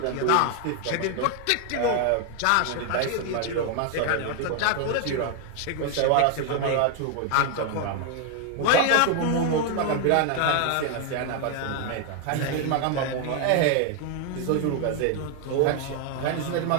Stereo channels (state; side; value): different; both; correlation 0.01